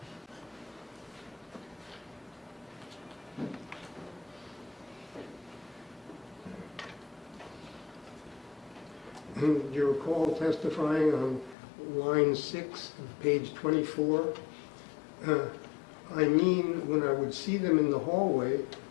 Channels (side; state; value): right; drops out; at 11.6 s